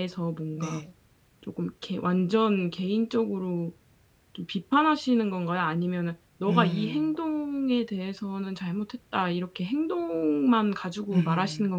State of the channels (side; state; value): both; identical; correlation 1.00